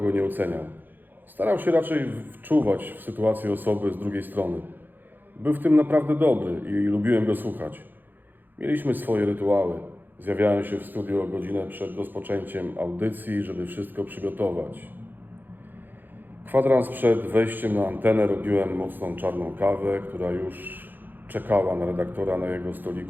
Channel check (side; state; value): left; late; 0.089 ms